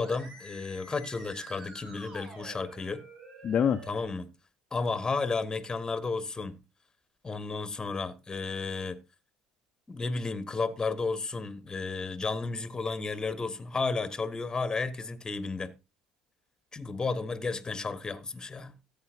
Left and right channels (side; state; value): right; quieter; 4.1 dB